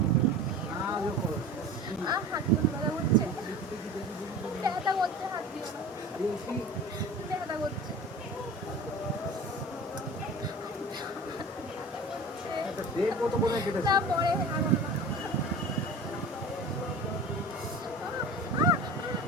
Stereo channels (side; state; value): both; normal; correlation 0.36